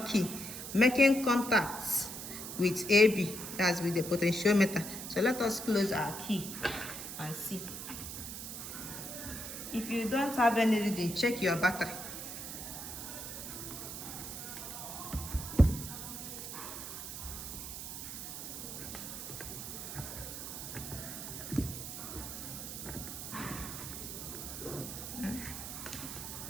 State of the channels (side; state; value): right; noise; hiss, 7 dB below the sound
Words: key, making contacts with AB, that's with the potentiometer. So let us close our key and see. If you don't have any reading, check your battery.